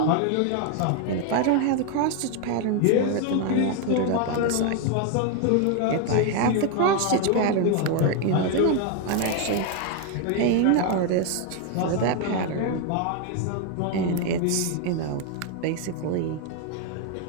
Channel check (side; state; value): both; different; correlation 0.01